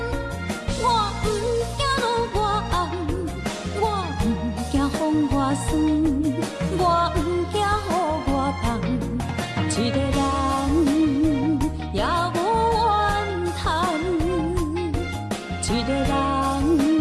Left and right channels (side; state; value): both; identical; correlation 1.00